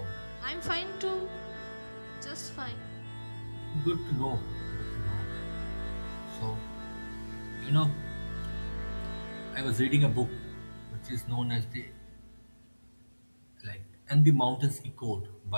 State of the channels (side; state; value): both; inverted; correlation -1.00